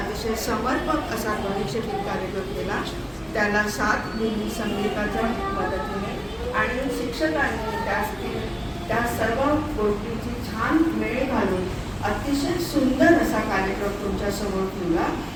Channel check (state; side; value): identical; both; correlation 1.00